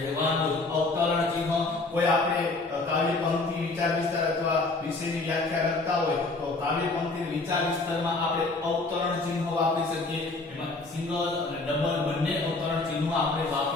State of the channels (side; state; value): right; quieter; 3.4 dB